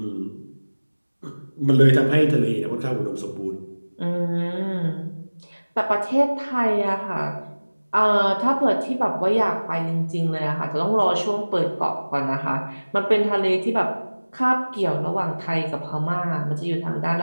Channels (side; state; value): both; inverted; correlation -1.00